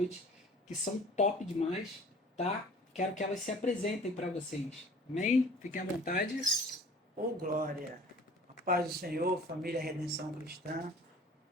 que são top demais, tá? Quero que elas se apresentem para vocês. Amém? Fiquem à vontade. Ô glória, a paz do Senhor, família Redenção Cristã.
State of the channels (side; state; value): both; normal; correlation 0.48